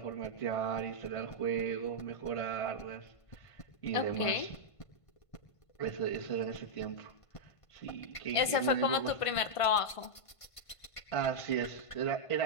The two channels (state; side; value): late; right; 1.5 ms